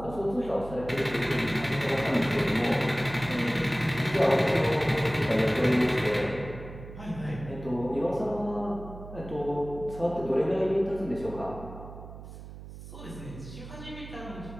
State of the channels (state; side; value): noise; right; hum, 13 dB below the sound